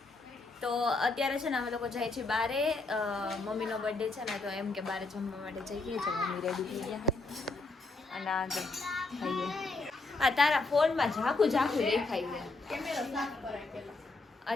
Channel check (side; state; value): right; quieter; 3.5 dB